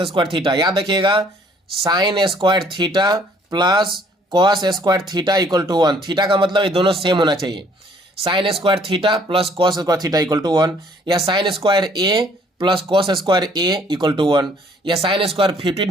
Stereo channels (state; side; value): normal; both; correlation 0.61